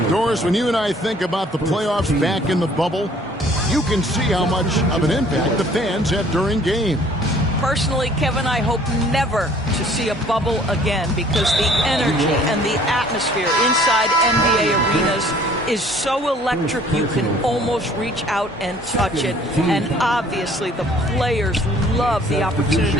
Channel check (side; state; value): both; normal; correlation 0.55